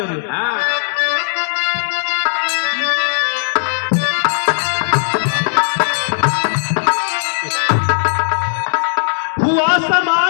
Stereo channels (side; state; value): right; silent; 62 dB below the other